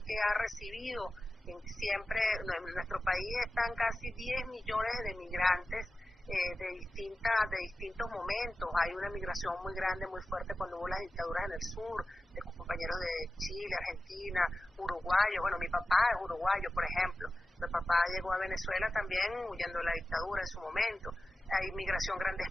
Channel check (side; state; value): both; normal; correlation 0.94